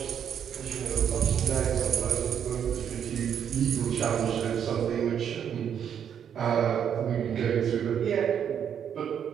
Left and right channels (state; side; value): quieter; left; 8.5 dB